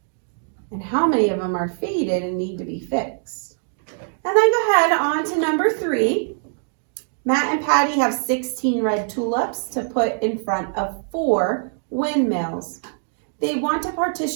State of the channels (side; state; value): left; silent; digital silence